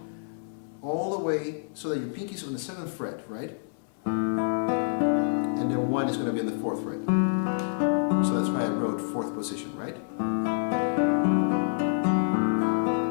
all the way so that your pinky is on the 7th fret, right? And then 1 is going to be in the 4th fret. So that's why I wrote 4th position, right?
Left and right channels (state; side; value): silent; right; digital silence